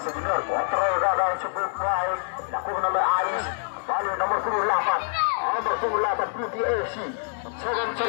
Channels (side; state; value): right; silent; 57 dB below the other